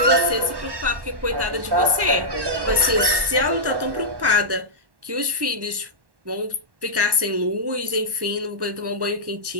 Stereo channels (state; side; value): late; left; 1.1 ms